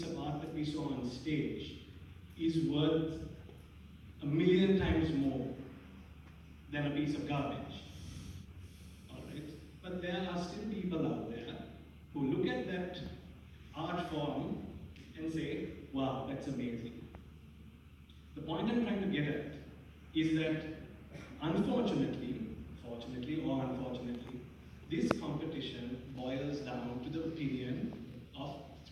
of art that we saw on stage is worth 1,000,000 times more than a piece of garbage. All right? But there are still people out there who look at that art form and say, wow, that's amazing. The point I'm trying to get at is that unfortunately, fortunately or unfortunately, this competition boils down to the opinion of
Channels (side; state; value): both; identical; correlation 1.00